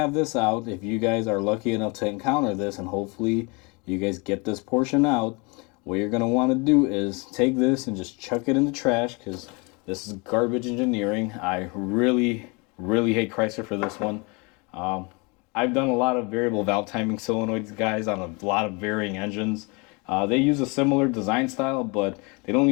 this out, if you guys are lucky enough to encounter this, and hopefully you guys get this portion out, what you're going to want to do is take this and just chuck it in the trash, because this is garbage engineering. I really hate Chrysler for this one. I've done a lot of variable valve timing solenoids, guys, on a lot of varying engines. They use a similar design style, but they don't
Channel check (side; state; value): right; quieter; 29.5 dB